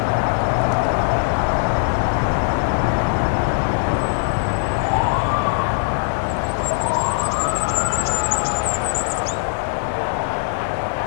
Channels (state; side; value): silent; right; digital silence